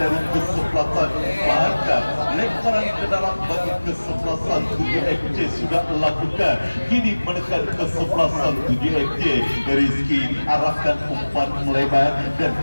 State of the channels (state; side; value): inverted; both; correlation -1.00